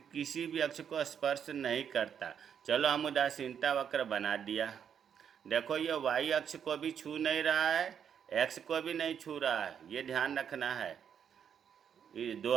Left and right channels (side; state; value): left; quieter; 8.1 dB